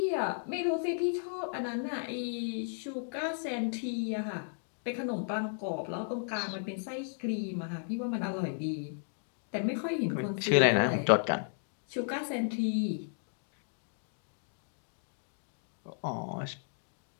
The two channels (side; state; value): right; silent; digital silence